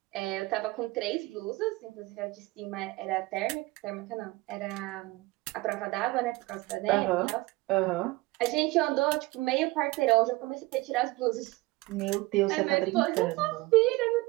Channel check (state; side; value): quieter; left; 21.7 dB